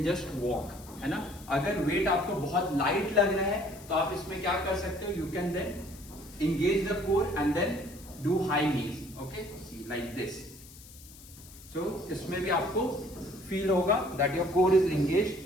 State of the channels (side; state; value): left; noise; hiss, 20 dB below the sound